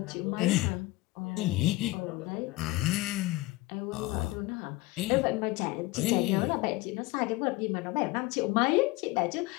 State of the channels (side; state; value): right; quieter; 20.1 dB